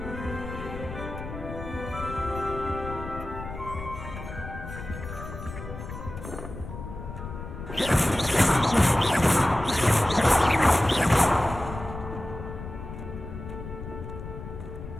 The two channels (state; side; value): noise; left; rumble, 10 dB below the sound